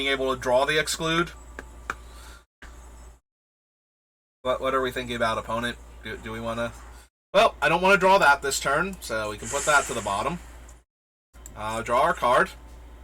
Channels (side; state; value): both; identical; correlation 1.00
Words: able to draw the Exclude. What are we thinking about, opponent? Do we want to... Well, I don't want to draw that this turn, so we can put that to the bottom. Draw our card.